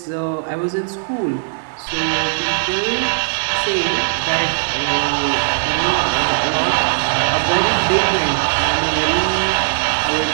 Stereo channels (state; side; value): silent; left; digital silence